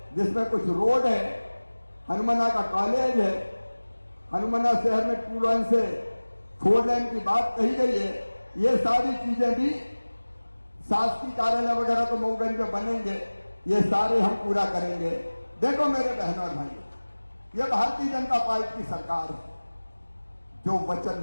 जिसमें कुछ रोड है, हनुमाना का कॉलेज है, हनुमाना शहर में 2 लाइन से 4 लाइन की बात कही गई है। ये सारी चीजें भी शासकीय कार्यालय वगैरह तो मऊगंज में बनेंगे, ये सारे हम पूरा करेंगे। देखो मेरे बहनों और भाइयों, ये भारतीय जनता पार्टी की सरकार है, जो वचन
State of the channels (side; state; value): both; inverted; correlation -1.00